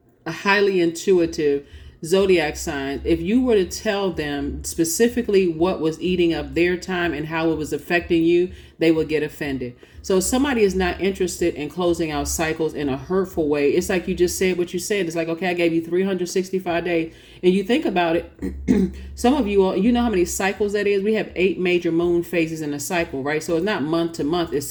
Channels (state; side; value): identical; both; correlation 1.00